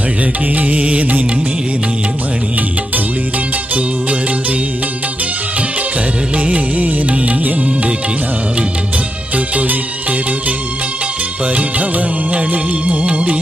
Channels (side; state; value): both; normal; correlation 0.85